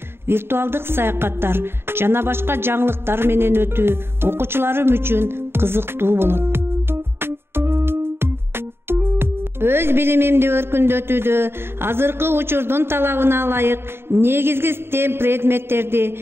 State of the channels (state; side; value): late; left; 0.11 ms